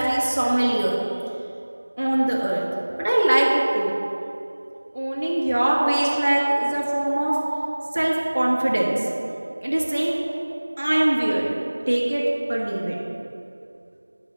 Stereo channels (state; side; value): inverted; both; correlation -1.00